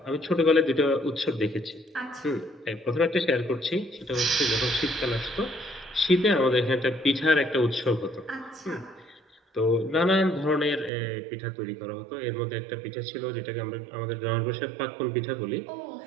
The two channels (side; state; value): left; drops out; at 10.9 s